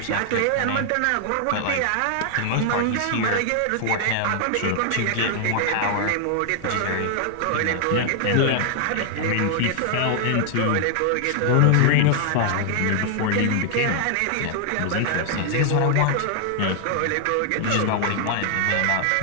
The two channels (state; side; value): different; both; correlation 0.00